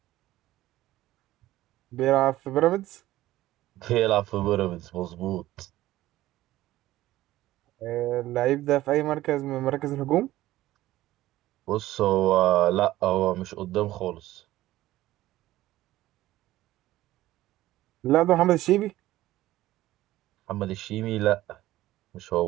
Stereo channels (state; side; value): quieter; left; 15.6 dB